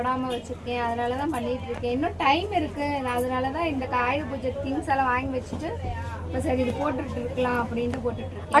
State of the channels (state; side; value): identical; both; correlation 1.00